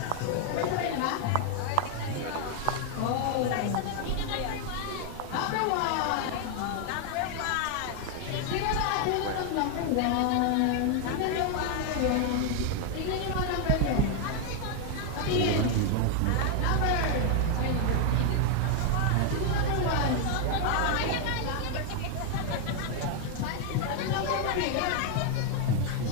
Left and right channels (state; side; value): different; both; correlation 0.01